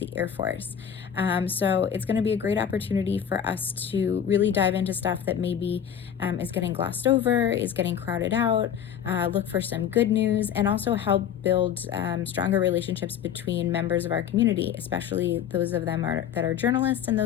Air Force. So it's going to be a great opportunity for us to really dive into stuff that maybe is getting glossed over, is getting crowded out, look for some good news, and also help build stronger relationships between members of our community, especially those of them that are journalists and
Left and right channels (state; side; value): quieter; right; 8.9 dB